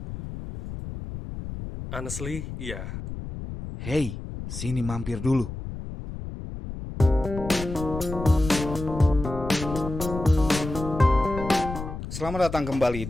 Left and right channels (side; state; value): left; noise; rumble, 8 dB below the sound